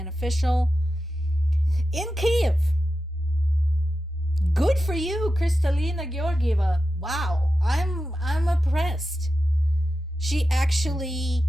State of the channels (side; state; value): both; normal; correlation 0.91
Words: officials in Kyiv. Good for you, Kristalina Georgieva. Wow, I'm impressed. She actually